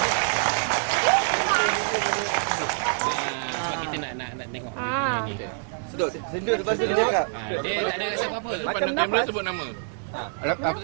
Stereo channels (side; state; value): left; silent; digital silence